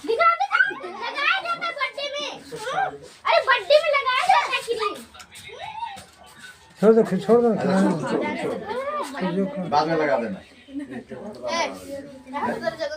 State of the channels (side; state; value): both; identical; correlation 1.00